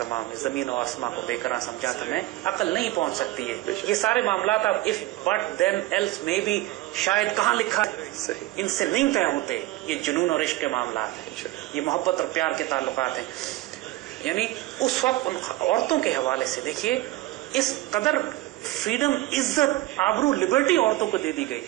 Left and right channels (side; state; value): left; quieter; 17.1 dB